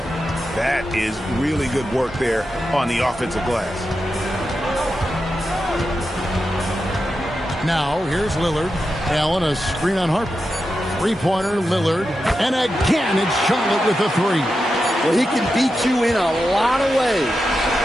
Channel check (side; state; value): both; normal; correlation 0.89